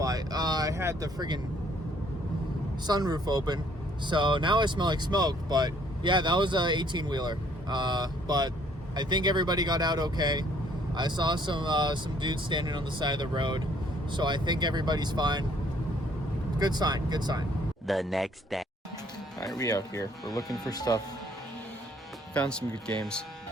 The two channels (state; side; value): normal; both; correlation 0.63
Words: I had the friggin' sunroof open, so now I smell like smoke. But yeah, that was a 18-wheeler. But I think everybody got out okay. I saw some dudes standing on the side of the road, so I think everybody's fine. Good sign, good sign. The next day. All right, we out here. We're looking for stuff. Found some good games.